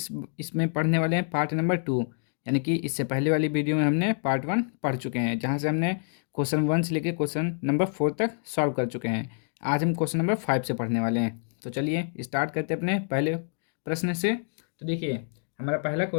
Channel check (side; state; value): right; silent; 56 dB below the other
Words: पढ़ने वाले हैं पार्ट नंबर 2। यानी कि इससे पहले वाली वीडियो में हमने पार्ट 1 पढ़ चुके हैं, जहां से हमने क्वेश्चन 1 से लेकर क्वेश्चन नंबर 4 तक सॉल्व कर चुके हैं। आज हम क्वेश्चन नंबर 5 से पढ़ने वाले हैं। तो चलिए स्टार्ट करते हैं अपने पहले प्रश्न से। तो देखिए, हमारा पहला